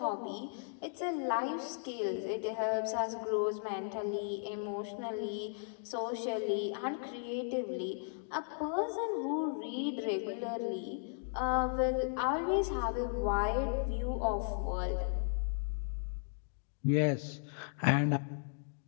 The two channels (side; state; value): right; silent; digital silence